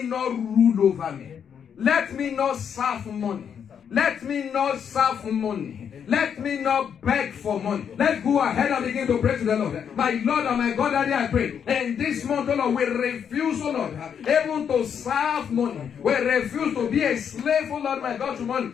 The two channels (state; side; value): quieter; right; 7.8 dB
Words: not rule over me. Let me not serve money. Let me not serve money. Let me not beg for money. Let's go ahead and begin to pray to the Lord. My Lord and my God, Daddy, I pray. In this month, oh Lord, we refuse, oh Lord, even to serve money. We refuse to be a slave, oh Lord, my God, to